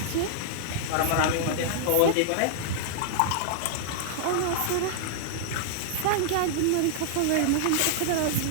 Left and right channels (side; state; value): both; different; correlation -0.01